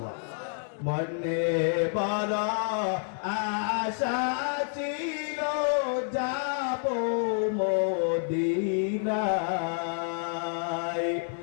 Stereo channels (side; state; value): right; silent; 56 dB below the other